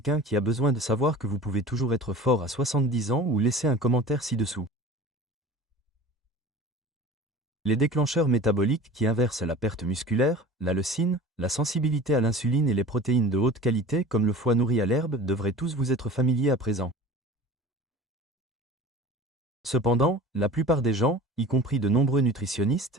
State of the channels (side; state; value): both; normal; correlation 0.40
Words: qui a besoin de savoir que vous pouvez toujours être fort à 70 ans ou laissez un commentaire ci-dessous. Les déclencheurs métaboliques qui inversent la perte musculaire, la leucine, la sensibilité à l'insuline et les protéines de haute qualité comme le foie nourri à l'herbe devraient tous vous être familiers à présent. Cependant, la plupart des gens, y compris de nombreux nutritionnistes,